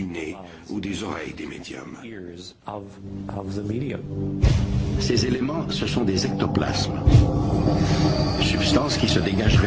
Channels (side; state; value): both; identical; correlation 1.00